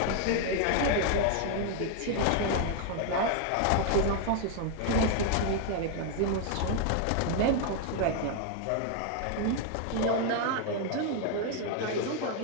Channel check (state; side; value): different; both; correlation 0.00